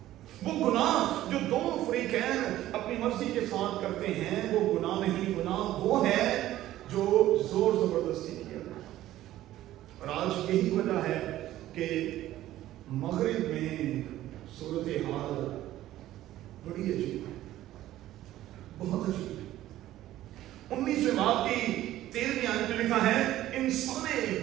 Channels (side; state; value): left; quieter; 14.2 dB